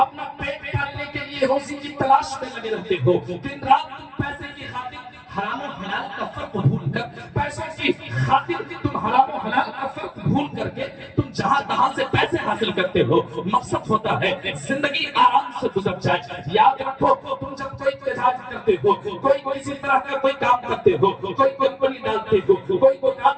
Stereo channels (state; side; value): identical; both; correlation 1.00